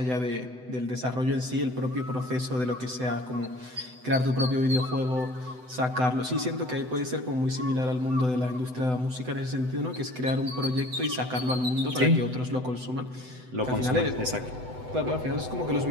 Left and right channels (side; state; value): left; late; 7.9 ms